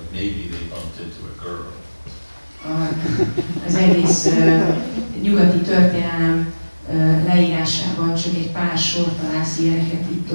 maybe they bumped into a girl. Az egész nyugati történelem leírásában csak egy pár sor találsz ilyeneket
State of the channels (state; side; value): inverted; both; correlation -1.00